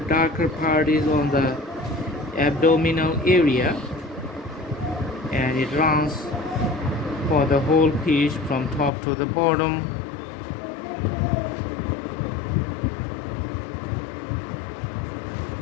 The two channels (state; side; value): drops out; right; at 8.9 s